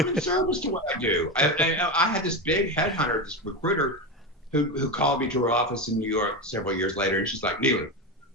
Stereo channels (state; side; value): normal; both; correlation 0.17